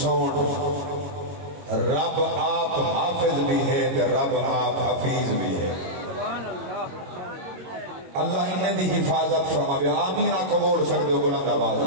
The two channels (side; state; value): left; late; 22 ms